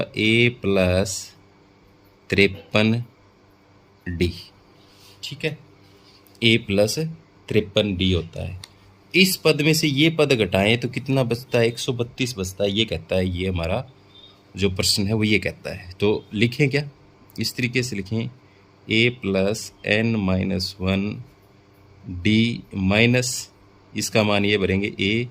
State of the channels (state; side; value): identical; both; correlation 1.00